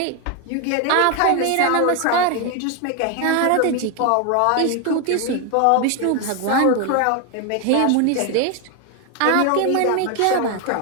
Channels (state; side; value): different; both; correlation 0.01